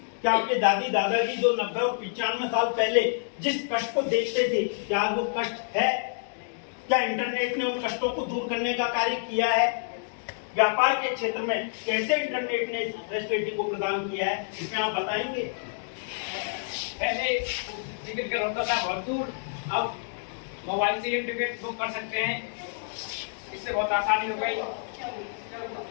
क्या आपके दादी दादाजी जो 90 और 95 साल पहले जिस कष्ट को देखते थे, क्या वो कष्ट है? क्या इंटरनेट ने उन कष्टों को दूर करने का कार्य किया है? व्यापार के क्षेत्र में कैसे इंटरनेट ने इस फैसिलिटी को प्रदान किया है, इसमें आप बताएंगे? पहले टिकट का होता था बहुत दूर, अब मोबाइल से ही टिकट बुक कर सकते हैं, इससे बहुत आसानी हो गई।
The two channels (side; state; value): right; silent; digital silence